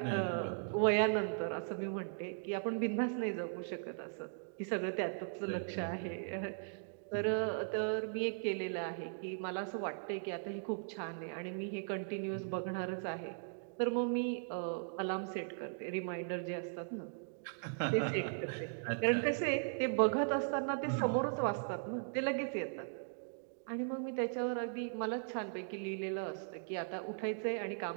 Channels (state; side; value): silent; left; digital silence